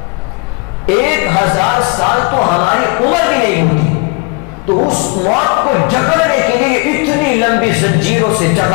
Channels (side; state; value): right; quieter; 28.2 dB